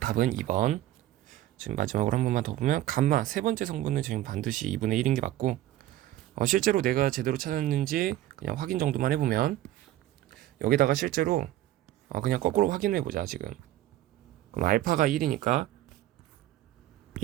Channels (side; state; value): left; quieter; 14.0 dB